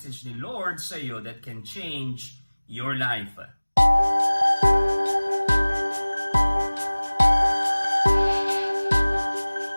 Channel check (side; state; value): both; inverted; correlation -1.00